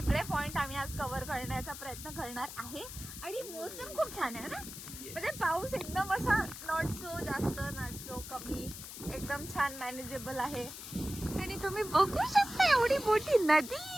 पॉइंट आम्ही आज कव्हर करण्याचा प्रयत्न करणार आहे. आणि मोसम खूप छान आहे ना. म्हणजे पाऊस एकदम असा नॉट सो जास्त नॉट सो कमी, एकदम छान मॅनेजेबल आहे. आणि तुम्ही बघू शकता एवढी मोठी नदी.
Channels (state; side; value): noise; left; hiss, 11 dB below the sound